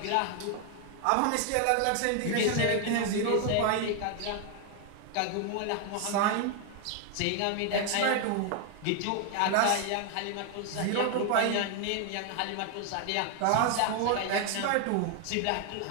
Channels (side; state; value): both; different; correlation 0.00